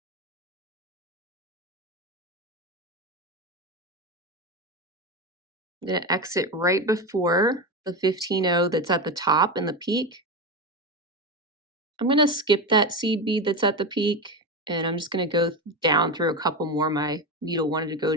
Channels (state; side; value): normal; both; correlation 0.18